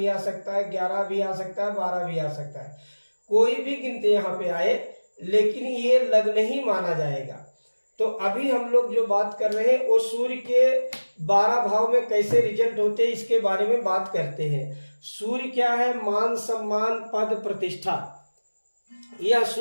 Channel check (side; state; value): both; inverted; correlation -1.00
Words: आ सकता है, 11 भी आ सकता है, 12 भी आ सकता है। कोई भी गिनती यहाँ पे आए, लेकिन ये लग्न ही माना जाएगा। तो अभी हम लोग जो बात कर रहे हैं वो सूर्य के 12 भाव में कैसे रिजल्ट होते हैं इसके बारे में बात करते हैं। सूर्य क्या है? मान, सम्मान, पद, प्रतिष्ठा, यह